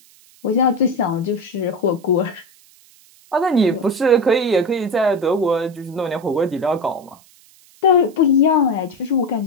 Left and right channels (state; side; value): noise; right; hiss, 28 dB below the sound